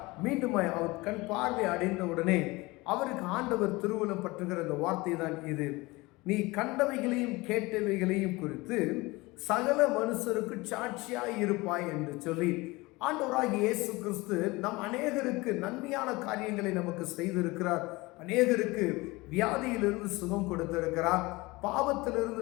மீண்டும் அவர் கண் பார்வை அடைந்த உடனே அவருக்கு ஆண்டவர் திருவுளம் பற்றுகிற இந்த வார்த்தை தான் இது: நீ கண்டவைகளையும் கேட்டவைகளையும் குறித்து சகல மனுஷருக்கு சாட்சியாய் இருப்பாய் என்று சொல்லி ஆண்டவராகிய இயேசு கிறிஸ்து நம் அநேகருக்கு நன்மையான காரியங்களை நமக்கு செய்திருக்கிறார். அநேகருக்கு வியாதியிலிருந்து சுகம் கொடுத்திருக்கிறார். பாவத்திலிருந்து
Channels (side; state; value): right; quieter; 22.4 dB